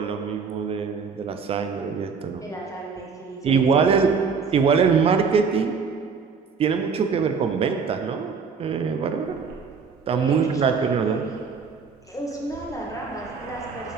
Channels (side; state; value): left; quieter; 5.5 dB